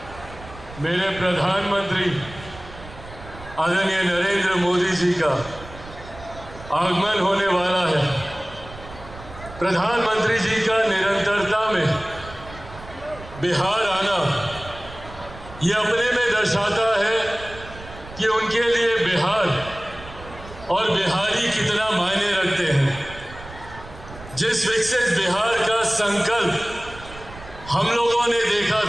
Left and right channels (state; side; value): noise; right; rumble, 16 dB below the sound